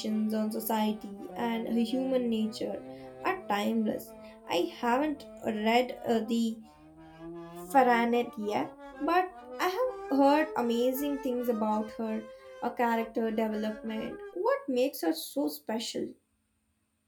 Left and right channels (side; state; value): both; identical; correlation 1.00